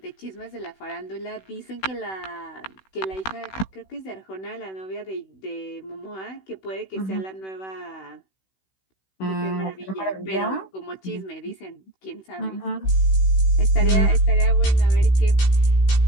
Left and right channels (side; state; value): right; late; 16 ms